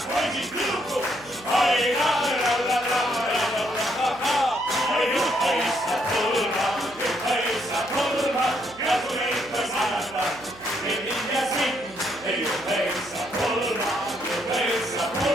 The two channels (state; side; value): noise; right; hum, 22 dB below the sound